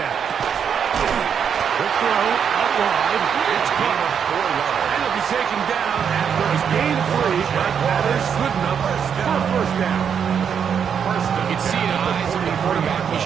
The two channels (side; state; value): left; quieter; 7.5 dB